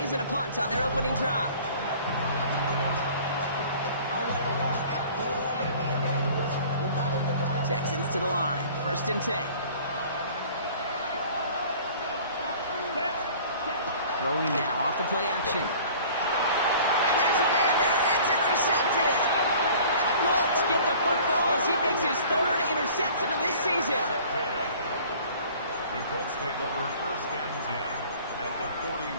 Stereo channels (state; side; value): inverted; both; correlation -0.48